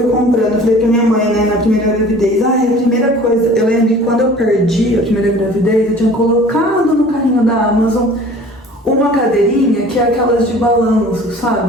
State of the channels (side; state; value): both; normal; correlation 0.47